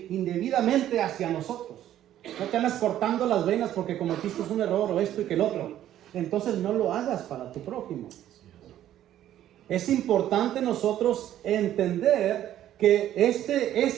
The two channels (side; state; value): left; quieter; 12.0 dB